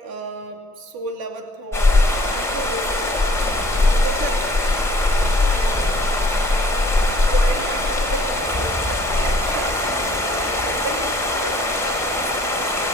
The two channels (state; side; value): normal; both; correlation 0.57